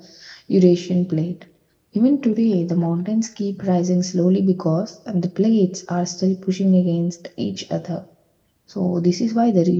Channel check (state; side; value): identical; both; correlation 1.00